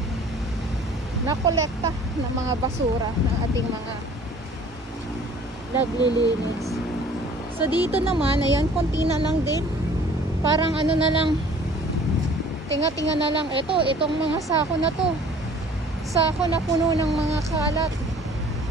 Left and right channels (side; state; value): both; normal; correlation 0.51